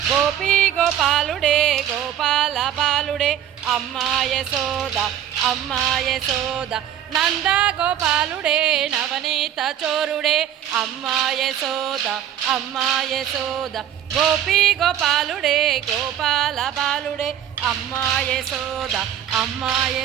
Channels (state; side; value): quieter; left; 10.4 dB